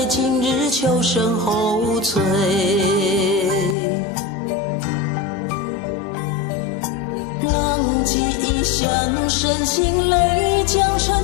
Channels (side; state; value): right; drops out; at 3.8 s